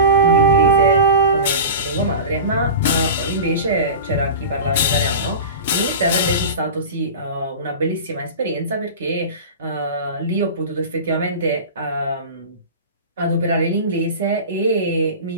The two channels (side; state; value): both; inverted; correlation -0.32